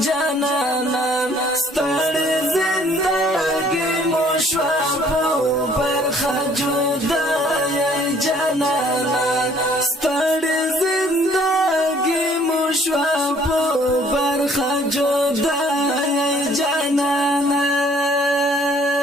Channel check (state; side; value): normal; both; correlation 0.59